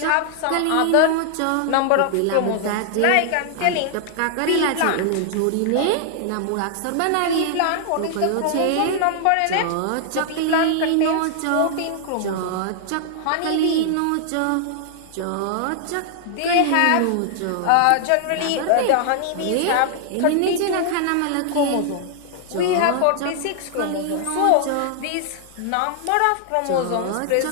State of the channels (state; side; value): different; both; correlation 0.00